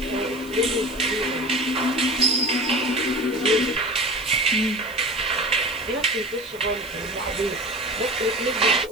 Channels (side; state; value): right; noise; hiss, 22 dB below the sound